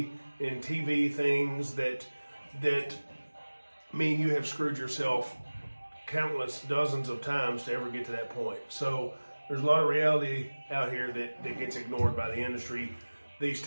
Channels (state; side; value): inverted; both; correlation -1.00